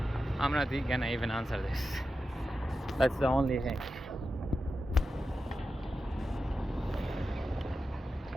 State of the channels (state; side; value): normal; both; correlation 0.91